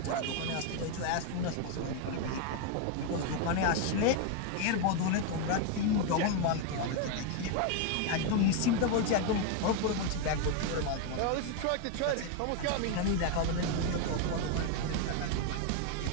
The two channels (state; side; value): different; both; correlation 0.01